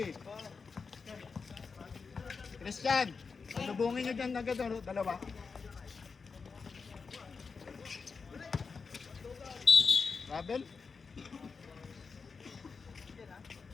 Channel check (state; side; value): quieter; right; 5.0 dB